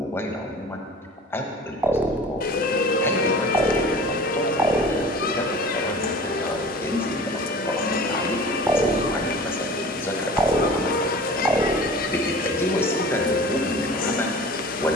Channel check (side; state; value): both; normal; correlation 0.41